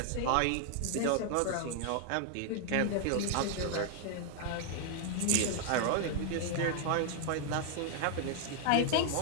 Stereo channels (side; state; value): both; different; correlation 0.00